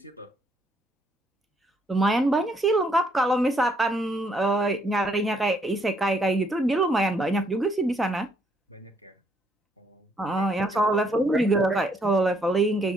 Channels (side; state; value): both; normal; correlation 0.70